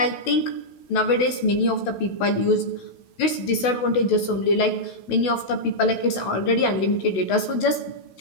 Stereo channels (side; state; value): right; late; 16 ms